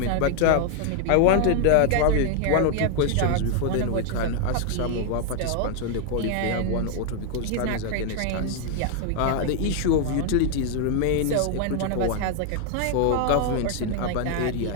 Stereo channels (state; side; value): different; both; correlation 0.00